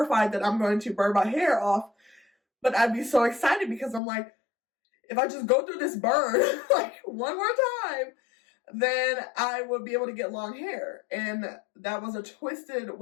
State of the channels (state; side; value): drops out; right; at 4.0 s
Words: that I'm going to burn my hair off. But I'd be so excited because I'm like, if I just go through this burn like one more time, then I would be able to get long hair. And that was a twisted